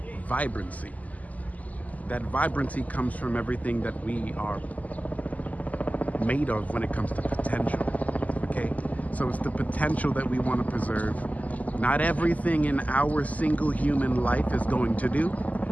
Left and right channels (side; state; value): right; late; 0.076 ms